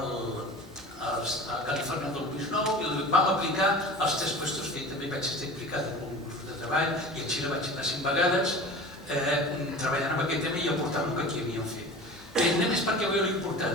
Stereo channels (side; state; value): both; normal; correlation 0.37